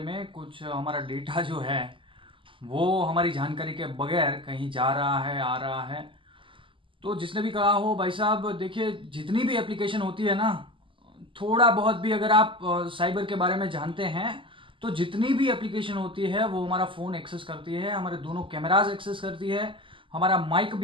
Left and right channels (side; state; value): left; late; 0.25 ms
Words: कुछ हमारा डेटा जो है वो हमारी जानकारी के बगैर कहीं जा रहा है, आ रहा है। तो जिसने भी कहा हो, भाई साहब देखिए, जितनी भी एप्लीकेशन होती है ना, थोड़ा बहुत भी अगर आप साइबर के बारे में जानते हैं, तो जितनी भी एप्लीकेशन होती है वो हमारा फ़ोन एक्सेस करती है, हमारे दोनों कैमराज एक्सेस करती है, हमारा माइक